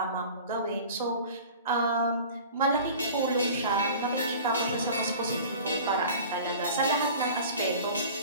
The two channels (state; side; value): inverted; both; correlation -0.41